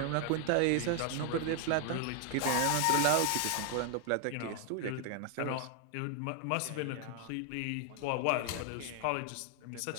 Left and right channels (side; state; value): both; different; correlation 0.00